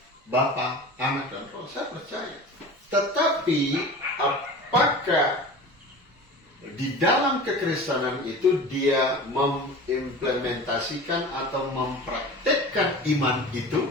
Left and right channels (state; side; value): normal; both; correlation 0.36